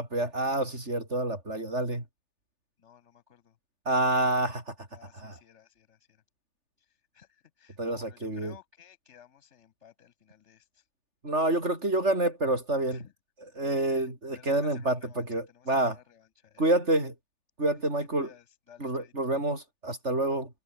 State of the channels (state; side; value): late; left; 3.4 ms